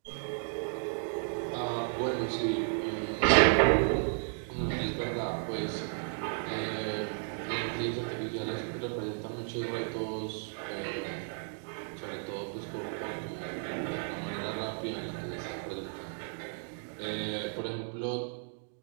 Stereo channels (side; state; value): left; silent; 55 dB below the other